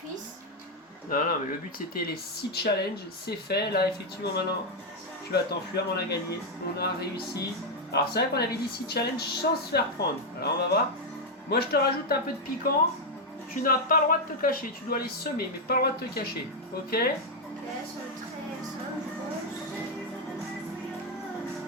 Non, non, mais le but c'était les 6 challenges. C'est fait. Là, effectivement, maintenant, tu vas t'enfuir. Mais on a gagné. On a réussi. Alors, c'est vrai qu'on avait dit 6 challenges sans se faire prendre. Alors, on va voir. Moi, je te rajoute un peu de piquant. Tu n'as pas le droit de te cacher. Tu dois les semer, mais pas le droit de te cacher. Ok? Ok, c'est très simple, je pense.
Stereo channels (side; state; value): both; normal; correlation 0.02